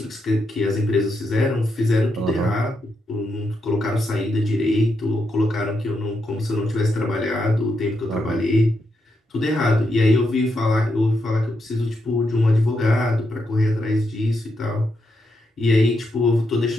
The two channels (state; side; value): normal; both; correlation 0.82